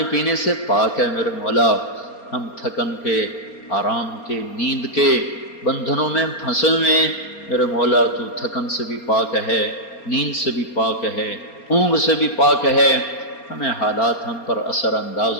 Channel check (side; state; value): right; late; 4.3 ms